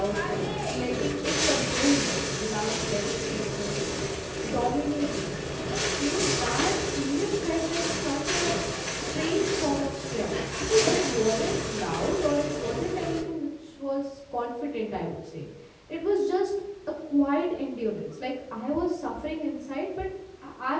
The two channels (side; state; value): both; identical; correlation 1.00